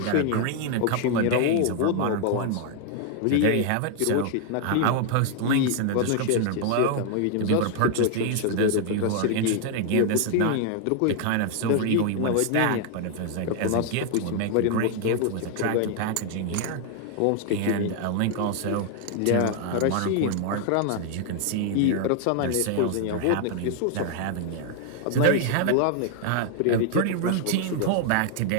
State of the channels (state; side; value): different; both; correlation 0.00